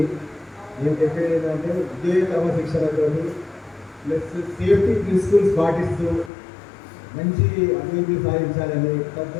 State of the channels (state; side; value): drops out; right; at 6.3 s